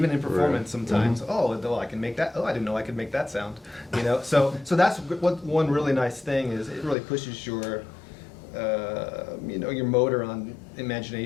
in performance sometimes. Oh, well, I can make that. Oh, I didn't know I could make that sound. You know, so that's what one really nice thing is. It really pushes your, you know, your motor on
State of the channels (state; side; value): drops out; right; at 7.0 s